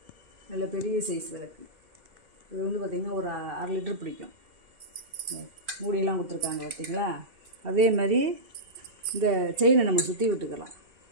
நல்ல பெரிய சைஸ் விளக்கு. இது வந்து பார்த்திங்கன்னா ஒரு 1/2 லிட்டர் பிடிக்கும். மூடியெல்லாம் கொடுத்துருக்காங்க பார்த்திங்களா. அதே மாதிரி இந்த செயினை நம்ம சுற்றி விட்டுக்கலாம்.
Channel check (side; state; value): left; late; 2.7 ms